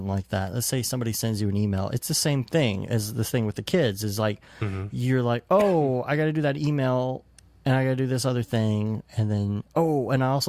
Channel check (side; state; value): both; identical; correlation 1.00